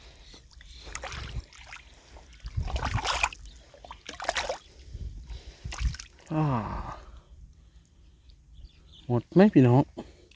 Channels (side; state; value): both; identical; correlation 1.00